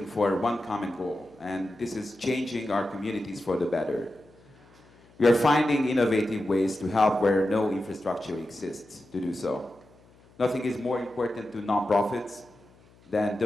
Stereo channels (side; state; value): left; noise; hum, 28 dB below the sound